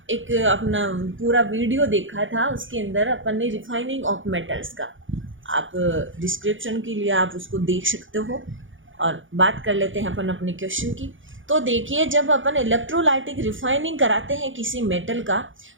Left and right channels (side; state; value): left; late; 0.57 ms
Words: एक अपना पूरा वीडियो देखा था, उसके अंदर अपन ने रिफाइनिंग ऑफ मेटल्स का, आप डिस्क्रिप्शन के लिए आप उसको देख सकते हो। और बात कर लेते हैं अपन अपने क्वेश्चन की। तो देखिए, जब अपन इलेक्ट्रोलाइटिक रिफाइनिंग कराते हैं किसी मेटल का,